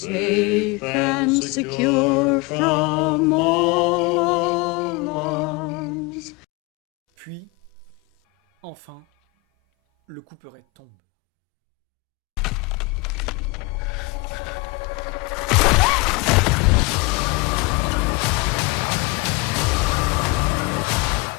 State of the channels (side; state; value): right; quieter; 24.4 dB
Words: and secure from all alarms. Puis, enfin, le couperet tombe.